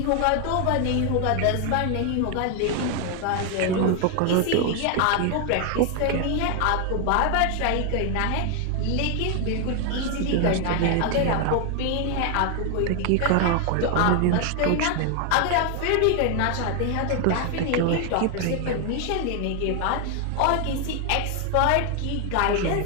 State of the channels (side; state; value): both; different; correlation 0.00